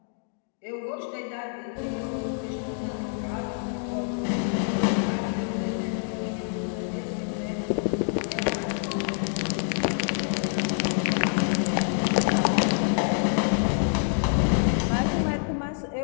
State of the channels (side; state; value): right; silent; 60 dB below the other